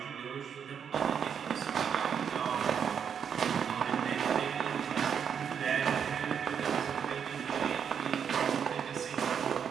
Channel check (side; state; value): left; quieter; 7.5 dB